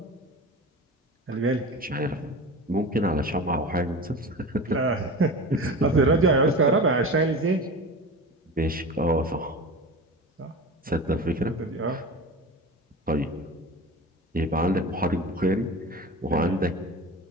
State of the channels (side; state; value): both; normal; correlation 0.31